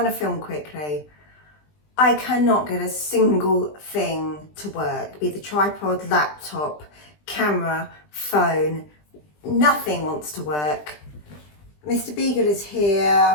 to film quickly. I cannot get a single thing to work, be it the tripod, laptop, camera, phone, nothing wants to work. Mr. Beagle is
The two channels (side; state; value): right; late; 20 ms